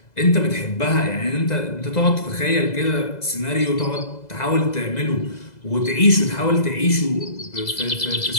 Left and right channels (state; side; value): late; right; 2.0 ms